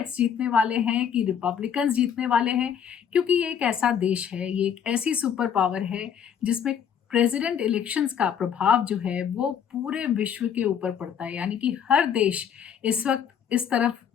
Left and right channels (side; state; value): right; quieter; 8.2 dB